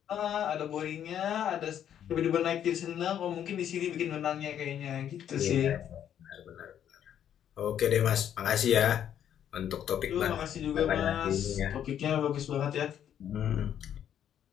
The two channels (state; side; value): quieter; right; 9.8 dB